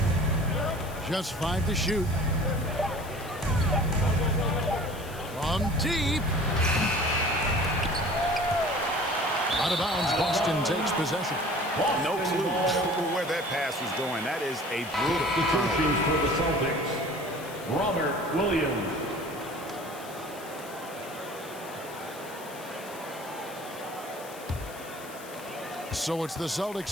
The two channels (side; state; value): left; noise; hiss, 17 dB below the sound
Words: Just 5 to shoot. From deep. Out of bounds, Boston takes possession. No clue where that pass was going. That is a brutal Substitutions for the Celtics. Robert Williams. So it's the